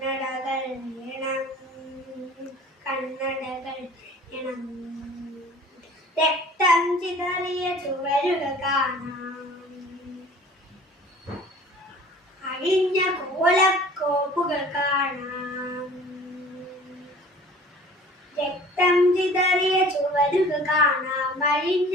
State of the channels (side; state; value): both; normal; correlation 0.47